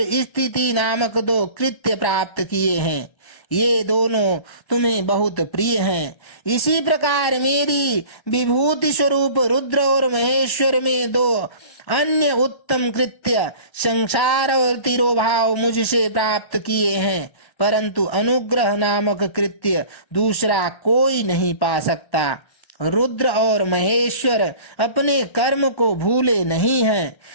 स्थिति नामक 2 कृत्य प्राप्त किए हैं। ये दोनों तुम्हें बहुत प्रिय हैं। इसी प्रकार मेरी विभूति स्वरूप रुद्र और महेश्वर में 2 अन्य उत्तम कृत्य संसार और तिरोभाव मुझसे प्राप्त किए हैं, परंतु अनुग्रह नामक कृत्य दूसरा कोई नहीं पा सकता। रुद्र और महेश्वर अपने कर्म को भूले नहीं हैं,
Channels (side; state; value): right; late; 1.3 ms